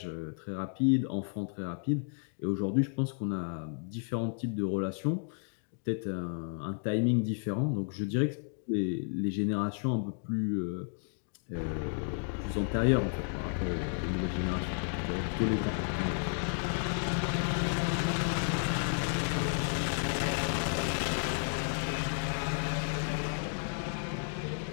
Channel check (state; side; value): silent; right; 56 dB below the other